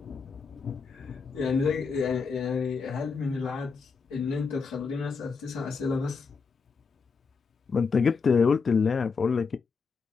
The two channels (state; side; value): quieter; right; 5.1 dB